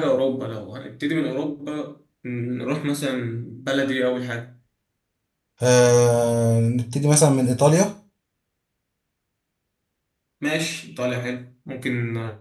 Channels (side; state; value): both; identical; correlation 1.00